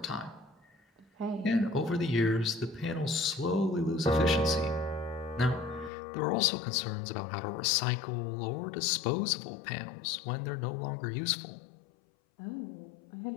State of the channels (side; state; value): right; drops out; at 5.9 s